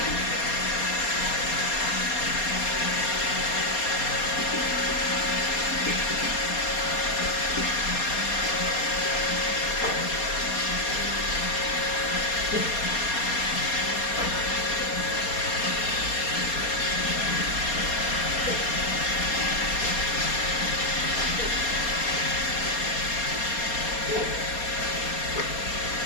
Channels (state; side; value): late; right; 4.2 ms